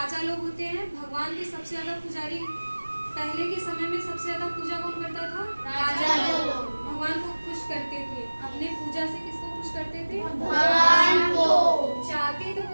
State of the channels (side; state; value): both; inverted; correlation -1.00